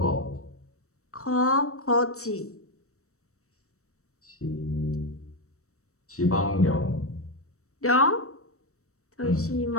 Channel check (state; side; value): late; right; 0.64 ms